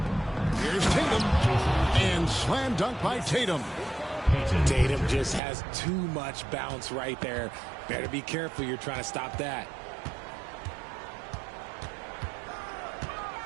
Here's Tatum. And slam dunk by Tatum. Tatum just has too much bounce right there. Better be careful. You're trying to stop that.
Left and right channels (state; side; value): drops out; left; at 5.4 s